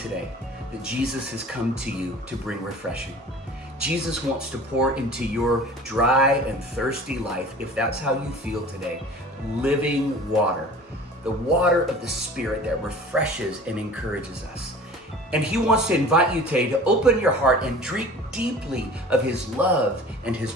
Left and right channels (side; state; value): both; normal; correlation 0.43